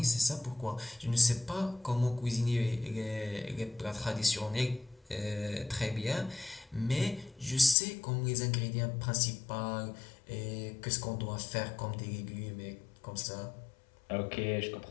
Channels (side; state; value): right; drops out; at 7.8 s